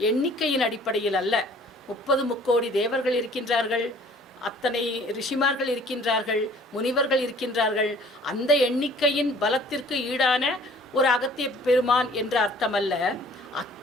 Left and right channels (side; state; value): both; normal; correlation 0.53